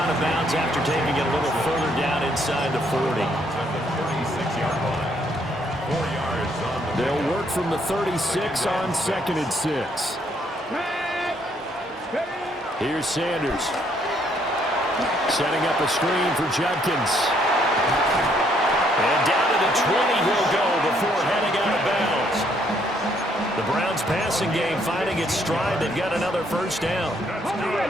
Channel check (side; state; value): both; normal; correlation 0.69